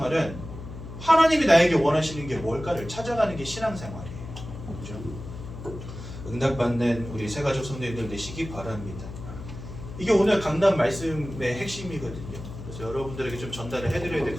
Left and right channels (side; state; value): left; noise; hum, 11 dB below the sound